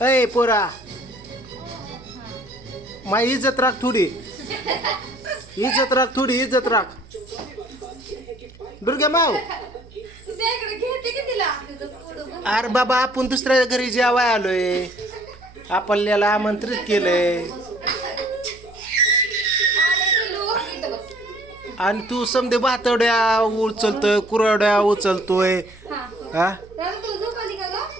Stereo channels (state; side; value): noise; right; hum, 23 dB below the sound